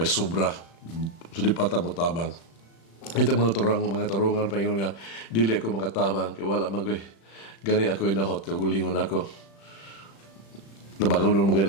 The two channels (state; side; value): late; right; 36 ms